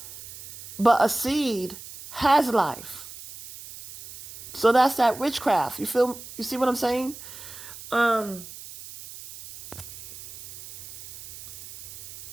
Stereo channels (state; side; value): noise; right; hiss, 15 dB below the sound